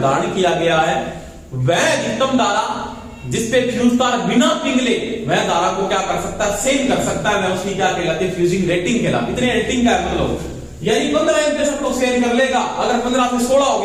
किया गया है, वह अधिकतम धारा जिसपे फ्यूज तार बिना पिघले वह धारा को क्या कर सकता है, सेम कर सकता है, वह उसकी क्या कहलाती है, फ्यूजिंग रेटिंग कहलाती है। इतने रेटिंग का मतलब यानी 15 एम्पीयर सब लोग सेम कर लेगा, अगर 15 से 16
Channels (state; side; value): identical; both; correlation 1.00